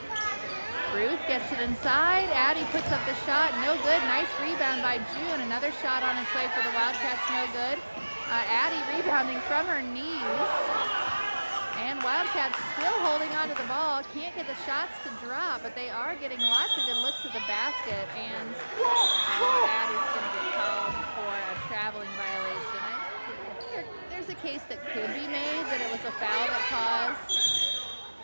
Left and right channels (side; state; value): both; inverted; correlation -1.00